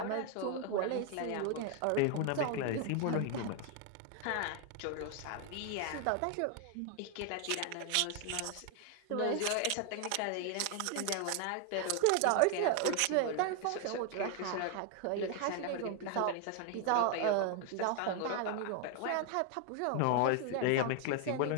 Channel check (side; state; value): both; different; correlation 0.00